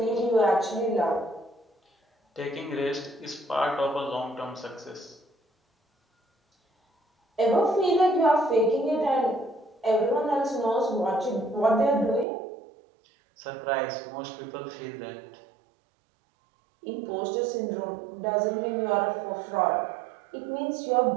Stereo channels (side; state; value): left; drops out; at 12.2 s